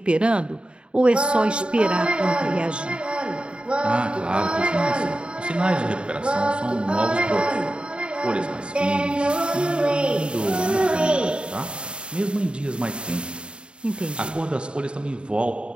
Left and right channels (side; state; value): left; late; 0.053 ms